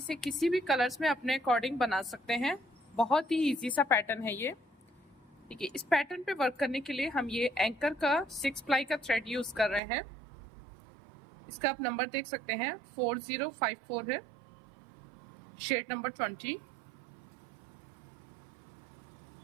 किसी भी कलर्स में अपने अकॉर्डिंग बना सकते हैं। बहुत ही इजी सा पैटर्न है ये। ठीक है, इस पैटर्न पे वर्क करने के लिए हम ये एंकर का 6 प्लाई का थ्रेड यूज कर रहे हैं। इसका आप नंबर देख सकते हैं 4054 है, शेड नंबर 20।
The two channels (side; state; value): left; drops out; at 9.8 s